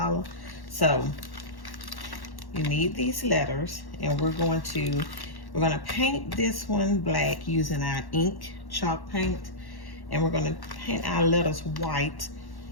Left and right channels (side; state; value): right; late; 1.1 ms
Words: So you need these letters, and we're going to paint this one black using our ink chalk paint, and we're going to paint our letters white